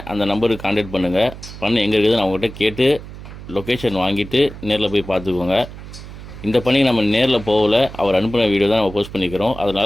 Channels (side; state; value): right; noise; hum, 14 dB below the sound